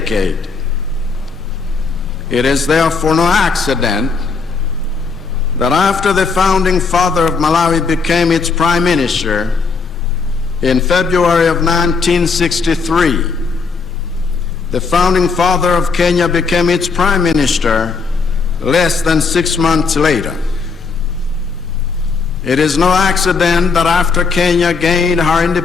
It is therefore no accident that after the founding father of Malawi became its prime minister in February of 1963, the founding father of Kenya became its prime minister less than 6 months later. It is no accident that after Kenya gained her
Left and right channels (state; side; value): quieter; right; 4.8 dB